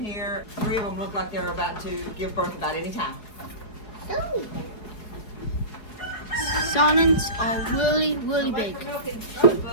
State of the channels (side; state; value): right; late; 4.7 ms